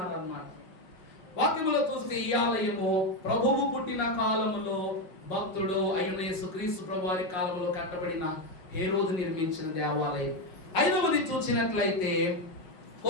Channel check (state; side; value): late; right; 5.4 ms